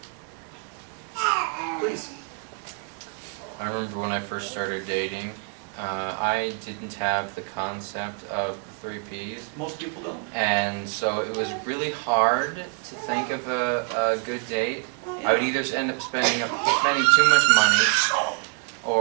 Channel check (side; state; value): left; quieter; 38.1 dB